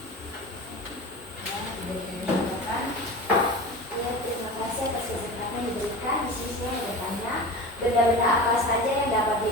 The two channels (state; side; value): normal; both; correlation 0.32